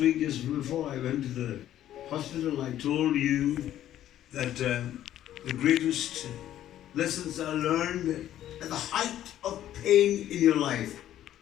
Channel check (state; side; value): quieter; right; 12.1 dB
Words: week, just before I went to the hospital, I told you that the greatest lessons are learned at the height of pain in your life.